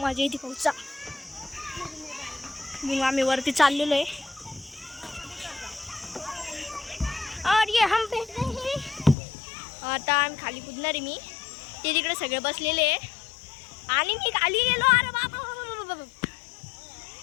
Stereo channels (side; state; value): right; drops out; at 9.2 s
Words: येते पाऊसचा. मग आम्ही वरती चाललेलो आहे. और ये हम पे आता आम्ही खाली कुदणार आहे. मी ते तिकडे सगळे बसलेले आहे आणि मी खाली गेलो. अरे बाबा,